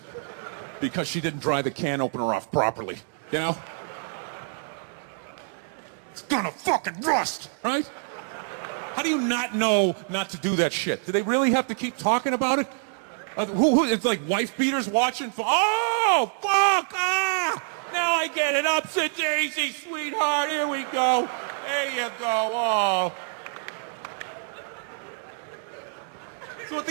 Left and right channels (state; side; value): silent; left; digital silence